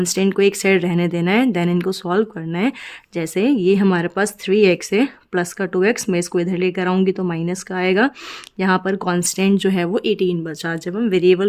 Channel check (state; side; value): identical; both; correlation 1.00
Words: को एक साइड रहने देना है, देन इनको सॉल्व करना है। जैसे ये हमारे पास 3x है, प्लस का 2x, मैं इसको इधर लेकर आऊँगी तो माइनस का आएगा। यहाँ पर कांस्टेंट जो है वो 18 बचा। जब हम